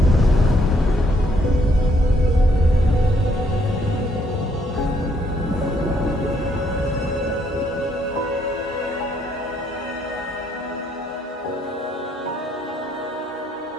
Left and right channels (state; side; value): normal; both; correlation 0.70